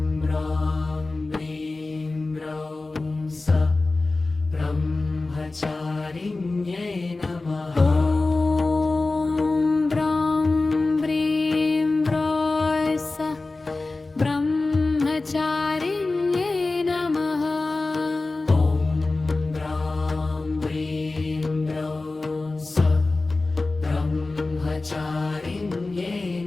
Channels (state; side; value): quieter; right; 3.3 dB